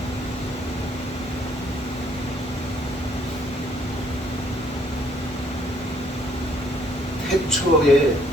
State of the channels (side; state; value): both; normal; correlation 0.65